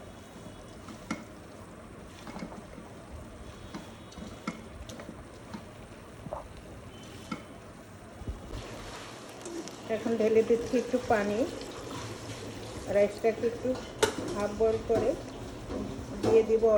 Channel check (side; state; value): both; identical; correlation 1.00